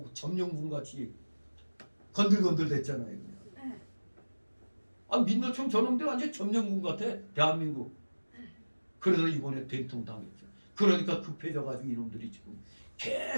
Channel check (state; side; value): inverted; both; correlation -1.00